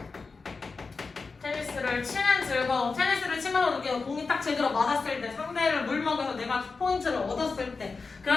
테니스를 치는 즐거움. 테니스를 치면서 느끼는 공이 딱 제대로 맞았을 때, 상대를 물먹여서 내가 포인트를 얻었을 때,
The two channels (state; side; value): quieter; right; 4.4 dB